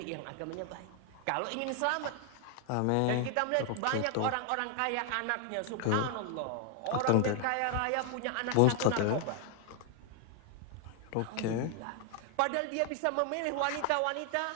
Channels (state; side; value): different; both; correlation 0.00